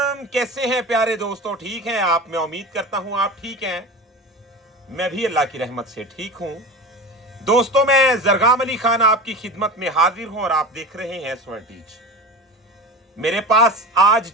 कैसे हैं प्यारे दोस्तों? ठीक हैं आप? मैं उम्मीद करता हूं आप ठीक हैं। मैं भी अल्लाह की रहमत से ठीक हूं। दोस्तों, मैं जरगाम अली खान आपकी खिदमत में हाजिर हूं और आप देख रहे हैं स्वर्ण टीच। मेरे पास आज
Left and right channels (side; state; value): both; normal; correlation 0.31